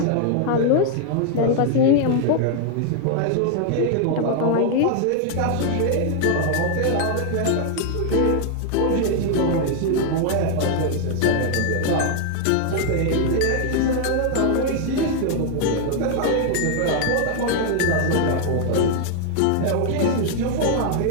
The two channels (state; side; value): different; both; correlation 0.00